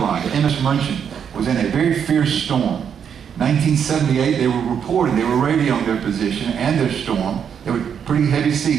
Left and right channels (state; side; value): quieter; left; 7.8 dB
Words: the MS Munchen, was in a very fierce storm. 1978, they were reporting, they were radioing their position and their storm. They were pretty heavy